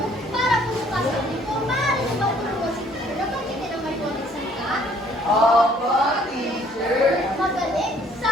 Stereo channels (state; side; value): normal; both; correlation 0.60